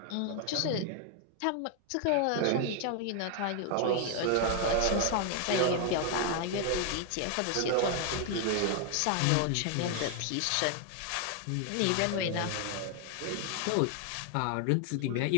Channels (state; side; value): different; both; correlation 0.00